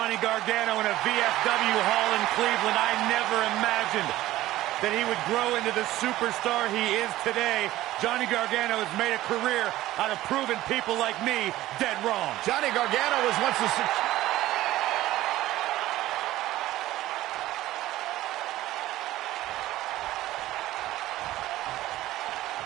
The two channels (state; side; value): quieter; left; 15.7 dB